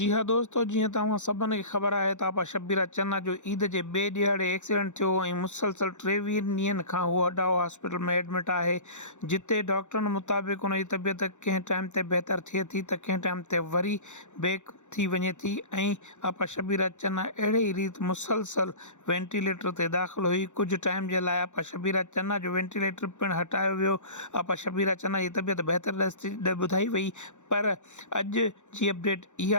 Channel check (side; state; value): right; late; 0.84 ms